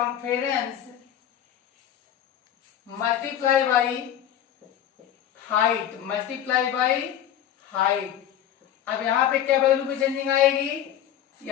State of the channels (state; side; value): quieter; right; 10.7 dB